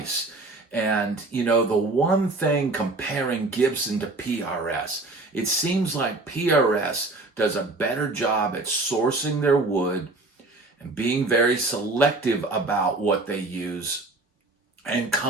And, the one thing comparing Gibson to PRS, it seems like PRS does a better job at sourcing their wood and being very selective about what they use, and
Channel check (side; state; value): left; quieter; 3.1 dB